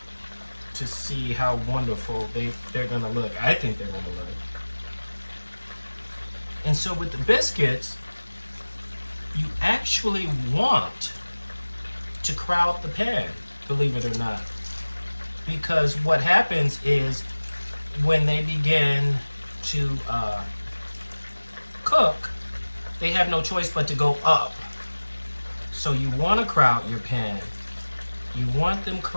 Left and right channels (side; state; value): both; inverted; correlation -1.00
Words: to see how wonderful they're gonna look. I think they're gonna look. And so with the biscuits, you actually want to crowd the pan, believe it or not. Because what happens is when they begin to cook, they have no choice but to go up. So you want to crowd your pan. You want them